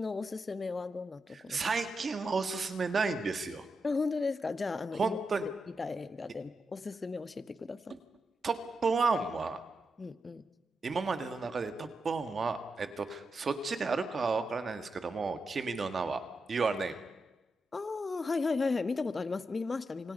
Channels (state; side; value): normal; both; correlation 0.86